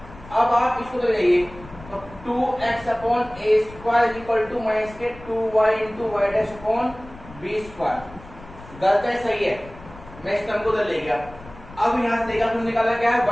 अब आप इसको ले जाइए तो 2x upon a square equal to minus के 2y into y dash upon b square. गलत है सही है, मैं इस टर्म को उधर ले गया। अब यहां से देखा तुम निकाला क्या है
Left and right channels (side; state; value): left; noise; rumble, 18 dB below the sound